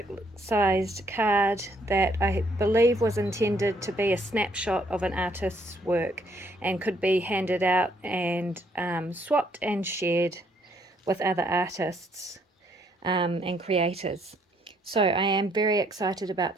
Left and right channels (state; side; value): normal; both; correlation 0.69